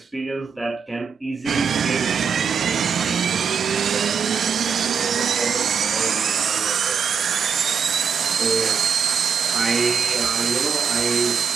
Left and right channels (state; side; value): quieter; left; 6.4 dB